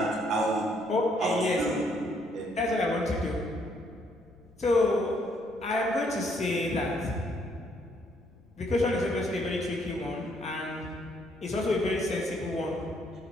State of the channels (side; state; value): left; noise; rumble, 29 dB below the sound